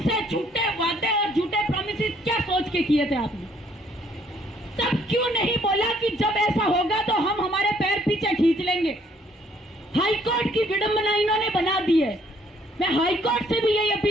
झूठे वादे और झूठे प्रॉमिसेस क्या सोच के किए थे आपने? तब क्यों नहीं बोला कि जब ऐसा होगा तो हम हमारे पैर पीछे खींच लेंगे? हाईकोर्ट की विडंबना इन्होंने बना दी है। मैं हाईकोर्ट से भी यही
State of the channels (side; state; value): both; normal; correlation 0.64